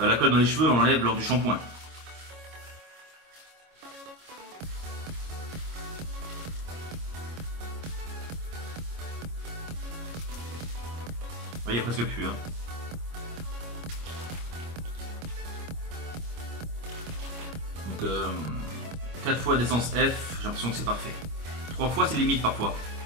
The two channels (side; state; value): left; late; 25 ms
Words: colle dans les cheveux, on l'enlève lors du shampoing. Il n'y a presque plus. Hein. Donc 4 fois d'essence F, j'ai l'impression que c'est parfait. 3 fois c'est limite parfois.